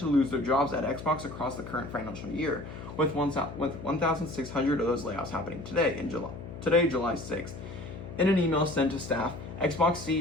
lose their jobs at Xbox across the current financial year, with 1,600 of those layoffs happening today, July 6th. In an email sent to staff, Xbox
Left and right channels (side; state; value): left; noise; hum, 11 dB below the sound